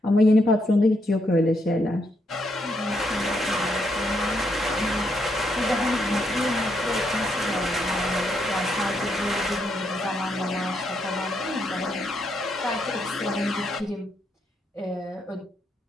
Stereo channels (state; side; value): normal; both; correlation 0.77